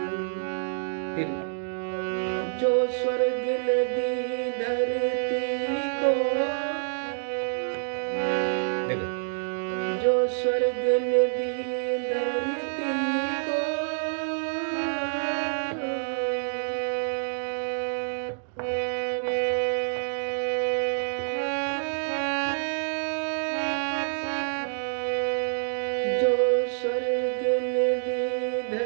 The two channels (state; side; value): silent; left; digital silence